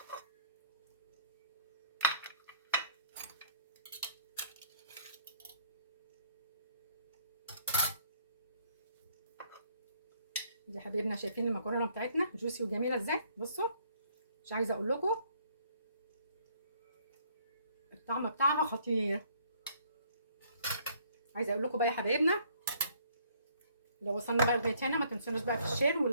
دي حبايبنا شايفين المكرونه بتاعتنا جوسي وجميله ازاي؟ بصوا مش عايزه اقول لكم الطعم بتاعها خطير. عايزه اقول لكم بقى يا حبايبنا، لو وصلنا بقى لغايه هنا ما تنسونوش بقى في الشير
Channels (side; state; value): both; inverted; correlation -0.63